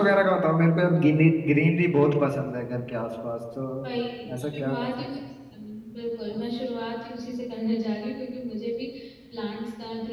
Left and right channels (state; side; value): identical; both; correlation 1.00